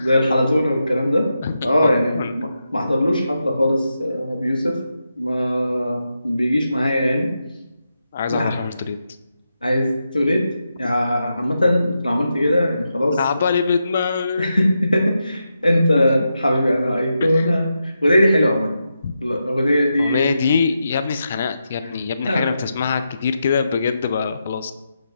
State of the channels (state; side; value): inverted; both; correlation -0.86